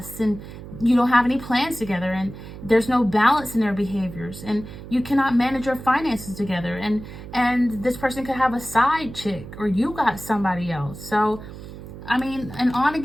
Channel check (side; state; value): right; noise; hum, 13 dB below the sound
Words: and you don't have any plans together, and there's no balance in their behaviors, and you cannot manage your finances together, and this person could have a side chick, or you got somebody else. So I mean, an on